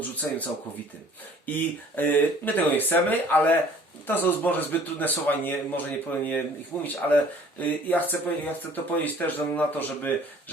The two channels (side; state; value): both; normal; correlation 0.53